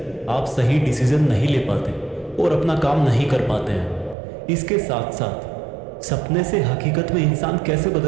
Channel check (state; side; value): drops out; left; at 4.2 s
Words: आप सही डिसीजन नहीं ले पाते और अपना काम नहीं कर पाते हैं। इसके साथ साथ सपने से हकीकत में इंसान कैसे